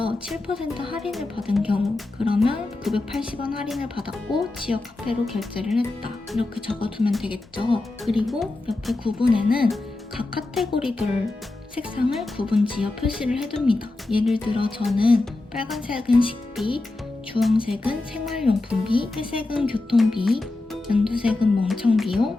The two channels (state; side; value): quieter; right; 3.0 dB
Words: 7% 할인을 받은 경우 그러면 980원 할인을 받았고 지역 카페로 결제를 했다 이렇게 적어두면 되겠죠. 그리고 옆에 구분에는 각 카테고리별 색상을 구분지어 표시를 해둡니다. 예를 들어 저는 빨간색은 식비, 주황색은 생활용품비, 회색은 교통비, 연두색은 멍청비용,